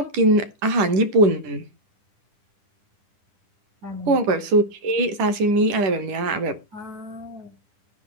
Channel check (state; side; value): late; left; 10 ms